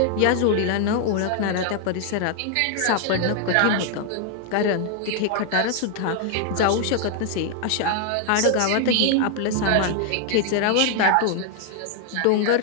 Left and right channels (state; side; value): different; both; correlation 0.00